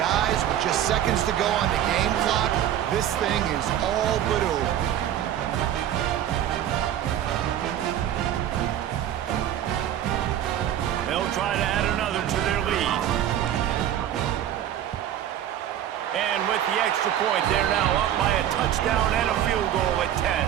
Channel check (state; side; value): quieter; left; 11.0 dB